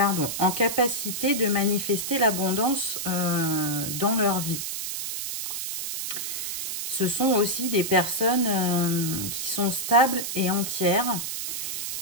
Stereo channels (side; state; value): right; noise; hiss, 4 dB below the sound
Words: en capacité de manifester l'abondance dans leur vie. Ce sont aussi des personnes qui sont stables et entières.